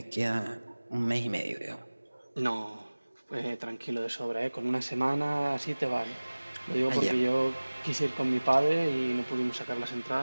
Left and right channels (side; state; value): both; inverted; correlation -1.00